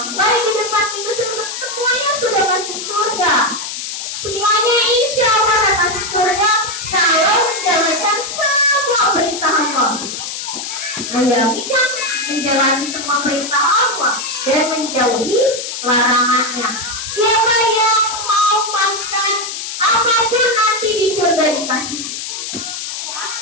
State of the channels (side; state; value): left; noise; hiss, 6 dB below the sound